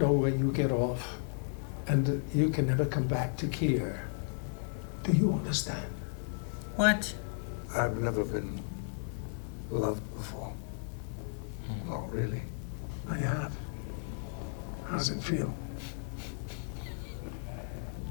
where you get off, and you can never come back to Kier. Do you understand? What? I've never been loved before. Oh, really? I have. How does it feel?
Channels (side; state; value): right; silent; 55 dB below the other